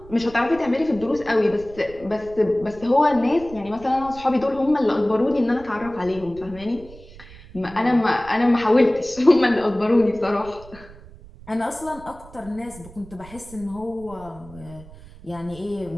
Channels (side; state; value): right; noise; rumble, 19 dB below the sound